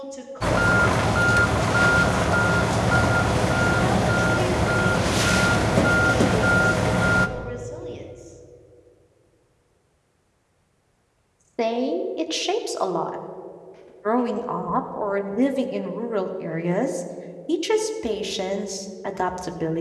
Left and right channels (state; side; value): identical; both; correlation 1.00